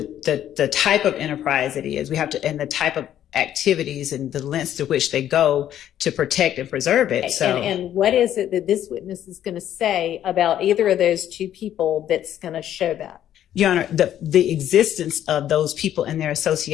type of enterprise it is. We have to, and the type of activities and the lengths to which they go to protect and preserve it. So, and what is it that this witness is going to say about either of those two people that's going to show that? Your Honor, the existence of those people and their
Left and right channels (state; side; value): quieter; right; 11.1 dB